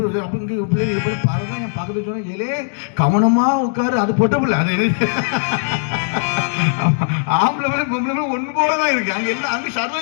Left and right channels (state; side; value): silent; right; digital silence